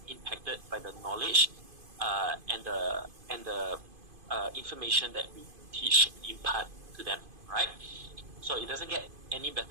impacted by the knowledge and the information that we teach, impart to them, right? So it doesn't get any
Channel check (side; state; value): left; late; 2.5 ms